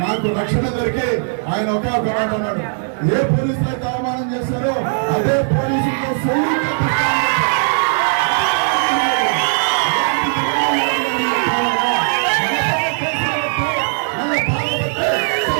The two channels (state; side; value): silent; left; 58 dB below the other